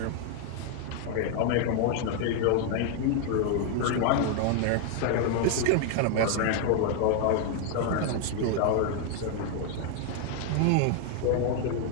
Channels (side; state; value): both; different; correlation 0.00